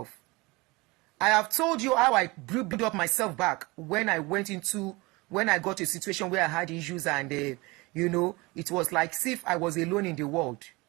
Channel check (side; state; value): left; quieter; 23.9 dB